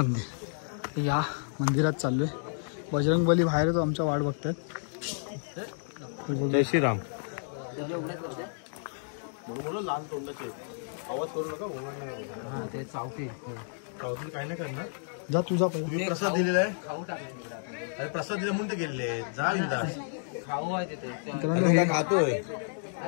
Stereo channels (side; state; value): right; silent; digital silence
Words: या मंदिरात चाललोय. बजरंग बली बाहेर तो आमच्या वाट बघतात. जय श्रीराम. ते चावती काय नाही करणार. जा तुझा पहिला. तुम्ही प्रसाद दिलेला आहे. अरे प्रसाद दिला म्हणून ते गेले. जा इंदास खाऊ आहे तिथे. मित्रांनो हे खातोय.